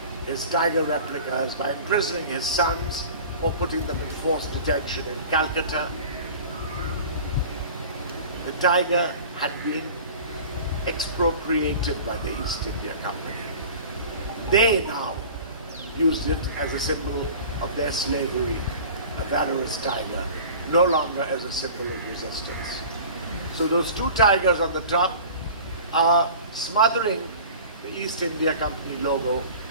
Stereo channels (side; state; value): both; inverted; correlation -0.40